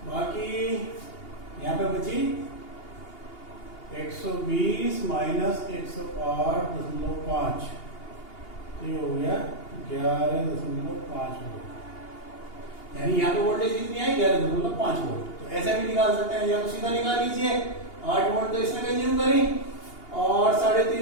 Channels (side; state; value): right; late; 2.8 ms